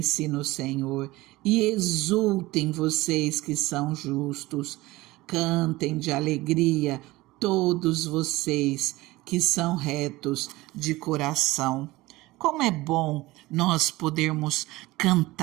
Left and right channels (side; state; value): left; quieter; 19.5 dB